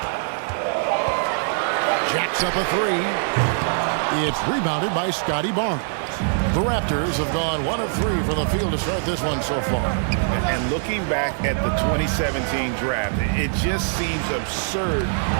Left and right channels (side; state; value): left; silent; digital silence